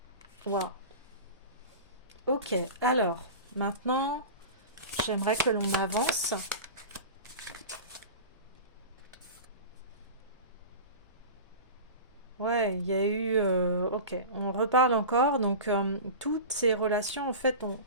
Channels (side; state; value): both; inverted; correlation -0.31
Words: Wow. Ok, alors, maintenant, j'aimerais que l'on avance. Ouais, il y a eu... ok, on reparle encore. Donc, toutes ces relations, en fait,